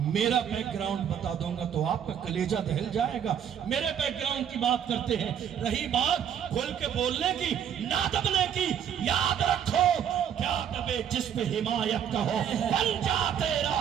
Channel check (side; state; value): left; quieter; 8.8 dB